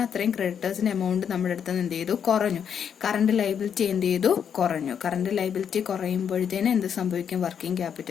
അത്രയും ക്രെഡിറ്റേഴ്സിന്റെ എമൗണ്ട് നമ്മുടെ അടുത്ത് എന്ത് ചെയ്തു, കുറഞ്ഞു. കറന്റ് ലൈബിലിറ്റി എന്ത് ചെയ്തു, കുറഞ്ഞു. കറന്റ് ലൈബിലിറ്റി കുറയുമ്പോഴത്തേന് എന്ത് സംഭവിക്കും, വർക്കിംഗ്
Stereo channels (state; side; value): quieter; right; 7.9 dB